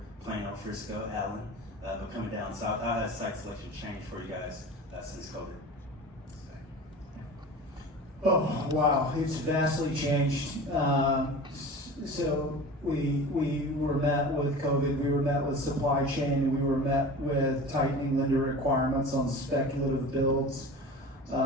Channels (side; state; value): both; normal; correlation 0.35